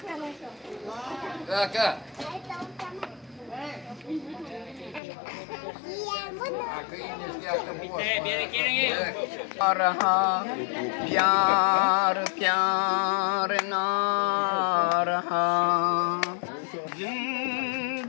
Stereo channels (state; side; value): drops out; right; at 5.0 s